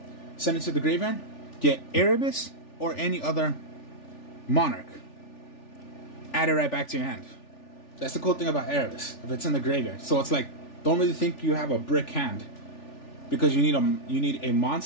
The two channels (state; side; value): late; right; 3.4 ms